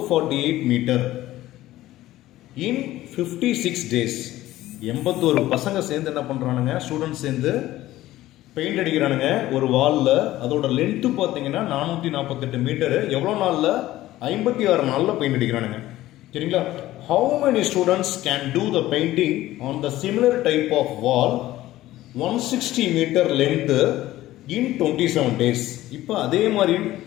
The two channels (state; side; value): quieter; right; 15.5 dB